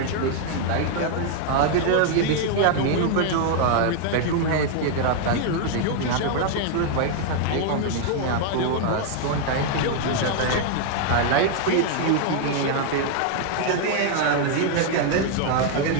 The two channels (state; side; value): different; both; correlation 0.00